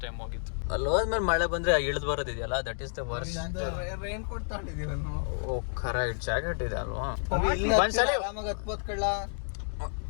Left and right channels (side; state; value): right; silent; digital silence